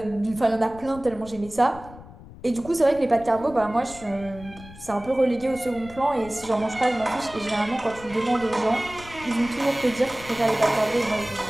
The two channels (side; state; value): left; noise; rumble, 18 dB below the sound